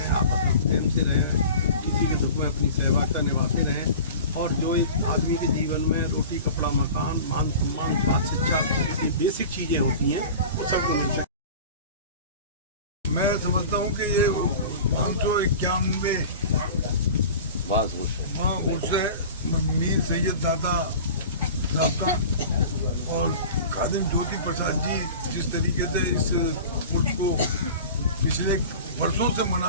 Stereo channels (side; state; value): both; inverted; correlation -0.37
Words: आपस में प्रेम से रहें, किसी के दुख में अपनी सहभागिता निभाते रहें, और जो एक आदमी के जीवन में रोटी, कपड़ा, मकान, मान सम्मान, बात, शिक्षा जैसी बेसिक चीज़ें होती हैं वो सब मिलते हैं। मैं समझता हूँ कि ये 551 उससे मीर सैयद दादा और खादिम ज्योति प्रसाद जी जिस तरीके से इस उर्स को पिछले वर्षों से